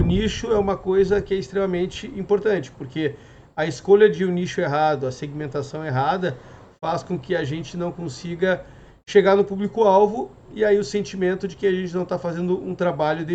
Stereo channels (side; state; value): both; identical; correlation 1.00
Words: nicho é uma coisa que é extremamente importante, porque a escolha de um nicho errado, a segmentação errada, faz com que a gente não consiga chegar no público-alvo e aí o sentimento de que a gente não está fazendo um trabalho